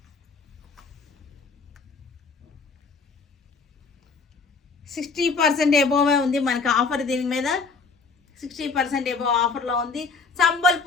$60% ఎబోవే ఉంది మనకి ఆఫర్. దీని మీద 60% ఎబోవ్ ఆఫర్లో ఉంది.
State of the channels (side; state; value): right; quieter; 4.6 dB